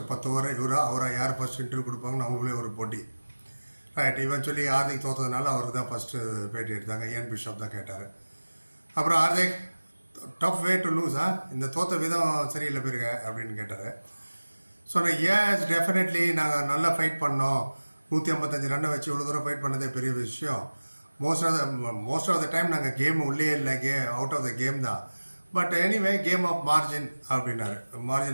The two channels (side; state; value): both; inverted; correlation -1.00